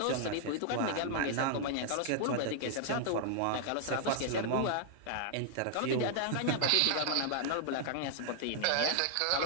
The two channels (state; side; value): different; both; correlation -0.01